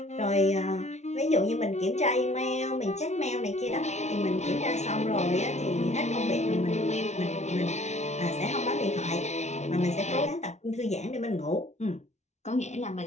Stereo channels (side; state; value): right; late; 0.32 ms